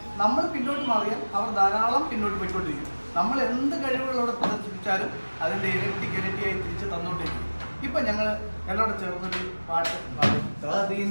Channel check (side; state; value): both; inverted; correlation -1.00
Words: നമ്മൾ പിന്നോട്ട് മാറിയാൽ അവർ ധാരാളം പിന്നോട്ട് പോയിക്കൊണ്ടിരിക്കും. നമ്മൾ എന്ത് കഴിവുകളോടെ പ്രദർശിപ്പിച്ചാലും അതിൻ്റെ ഇരട്ടിയായി തിരിച്ച് തന്നുകൊണ്ടിരിക്കും. ഇപ്പം ഞങ്ങൾ എല്ലാവരും ചേർന്നൊരു പാട്ട് പാടും.